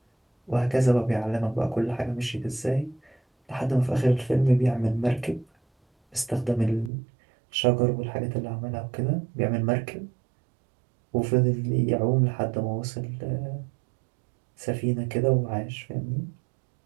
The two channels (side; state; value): left; drops out; at 6.9 s